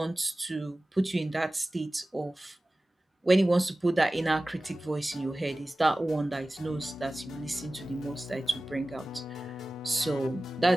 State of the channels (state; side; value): normal; both; correlation 0.97